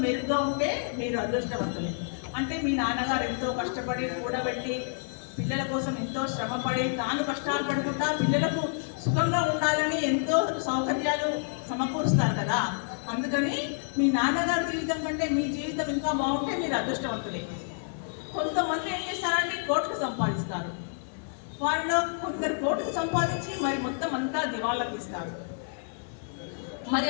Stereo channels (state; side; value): silent; right; digital silence